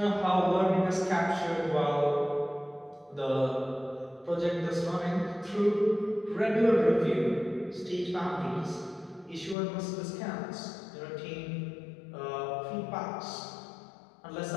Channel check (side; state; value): right; drops out; at 9.6 s